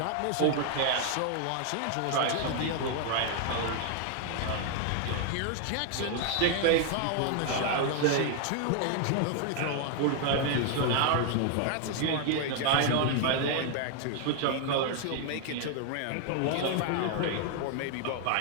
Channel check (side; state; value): both; different; correlation 0.00